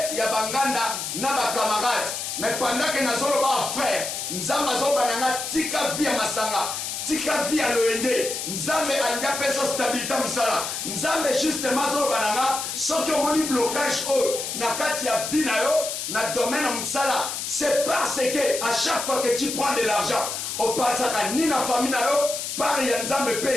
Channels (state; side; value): noise; left; hiss, 4 dB below the sound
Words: ya banganda na bakamarade mais pendant que nazolo ba frère nzamba zoba nanga tika via masanga tika via loyenge nzambe anga peso stabilité musala nzambe justement zoba nanga soki omoni blocage na kati ya vie na yo na domaine musala c'est parce que à chaque fois que tu prends de l'argent au pasaka ni na famille na yo par ya nzambe